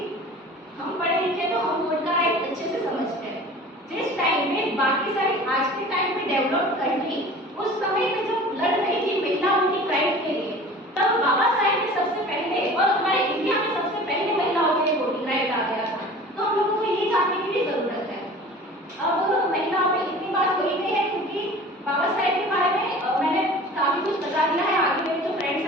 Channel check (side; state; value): both; normal; correlation 0.41